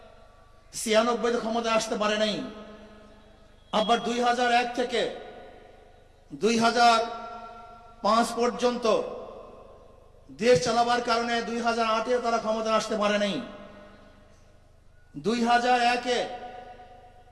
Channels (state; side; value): identical; both; correlation 1.00